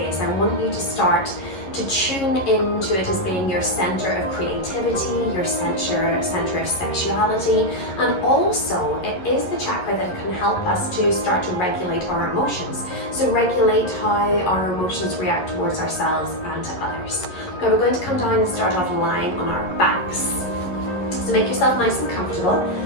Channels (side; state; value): right; late; 11 ms